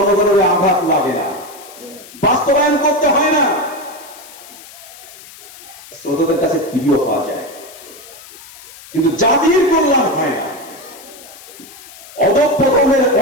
আঘাত লাগে না, বাস্তবায়ন করতে হয় না, শ্রোতাদের কাছে প্রিয় হওয়া যায়, কিন্তু জাতির কল্যাণ হয় না। অধঃপতনের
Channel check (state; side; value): noise; left; hiss, 19 dB below the sound